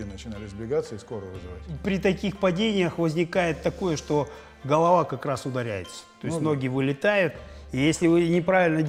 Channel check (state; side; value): identical; both; correlation 1.00